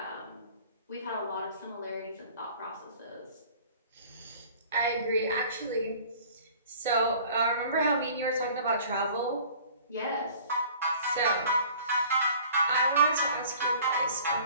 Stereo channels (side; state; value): both; inverted; correlation -0.49